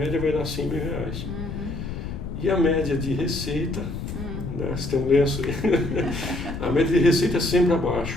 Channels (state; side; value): noise; left; rumble, 6 dB below the sound